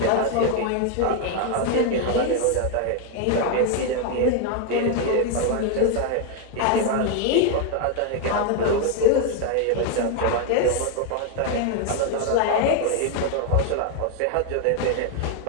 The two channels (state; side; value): different; both; correlation 0.01